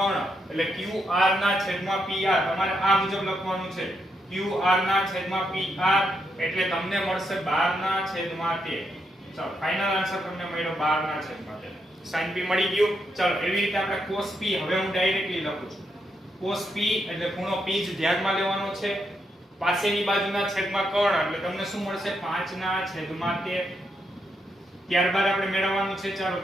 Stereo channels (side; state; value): both; normal; correlation 0.81